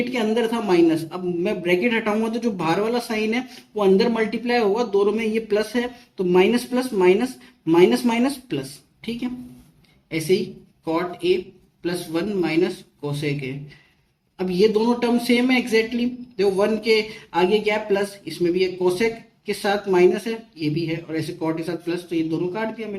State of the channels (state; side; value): identical; both; correlation 1.00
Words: के अंदर था माइनस। अब मैं ब्रैकेट हटाऊंगा तो जो बाहर वाला साइन है वो अंदर मल्टीप्लाई होगा, दोनों में ये प्लस है तो minus plus minus, minus minus plus, ठीक है। ऐसे ही cot A plus one minus cosec a. अब ये दोनों टर्म सेम है एग्जैक्टली, देखो वन के आगे क्या है प्लस, इसमें भी एक कोसेक के साथ माइनस है, ये भी है, और ऐसे कॉट के साथ प्लस, तो ये दोनों काट दिया